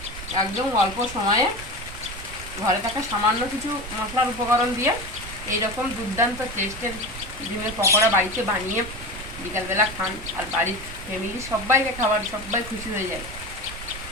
একদম অল্প সময়ে ঘরে থাকা সামান্য কিছু মশলার উপকরণ দিয়ে এইরকম দুর্দান্ত টেস্টের ডিমের পকোড়া বাড়িতে বানিয়ে বিকালবেলা খান, আর বাড়ির ফ্যামিলি সবাইকে খাবার, সবাই খুশি হয়ে যায়।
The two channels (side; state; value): right; noise; rumble, 12 dB below the sound